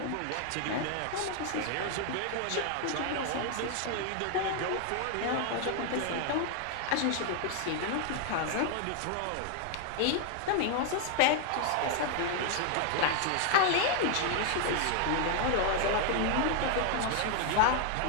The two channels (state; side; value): different; both; correlation 0.00